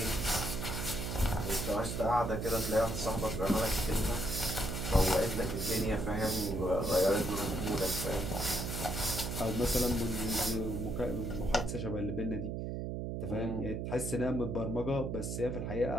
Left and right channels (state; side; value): noise; right; hum, 3 dB below the sound